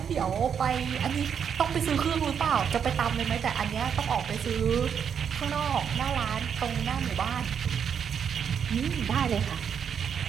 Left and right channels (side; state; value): left; quieter; 7.6 dB